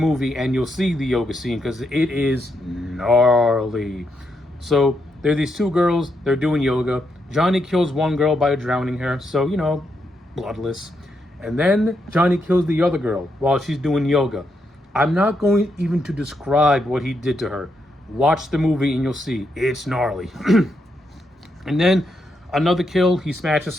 and you'll see the yoga scene because it is gnarly. So there are these two girls. They're doing yoga. Johnny kills one girl by drowning her, so bloodless. And then Johnny kills the other girl while she's doing yoga. I'm not going even to describe what he did to her. Watch the movie and you'll see. It's gnarly. And then another kill, he smashes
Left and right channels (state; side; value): normal; both; correlation 0.81